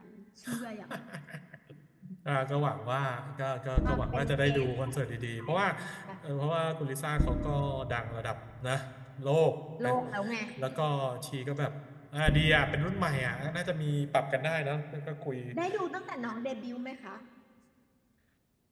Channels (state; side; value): identical; both; correlation 1.00